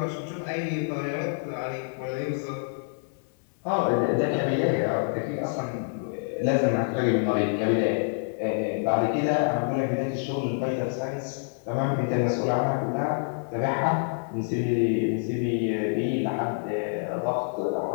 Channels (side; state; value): right; silent; digital silence